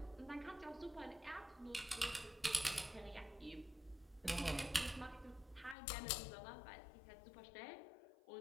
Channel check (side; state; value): right; drops out; at 5.8 s